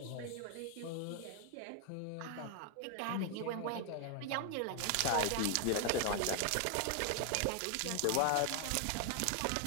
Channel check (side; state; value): both; different; correlation 0.00